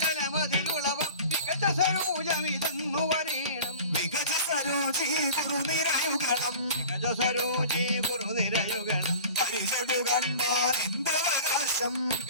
മികച്ച സരോജമിതെന്നു പറയണം മികച്ച സരോജി ഗുരുനിരയുഗണം മികച്ച സരോജി ഗുരുനിരയുഗണം പരിചൊടു കണ്ടാൽ എന്തവകാശം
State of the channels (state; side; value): inverted; both; correlation -0.40